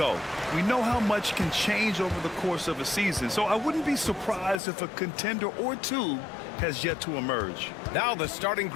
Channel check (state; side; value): drops out; right; at 4.6 s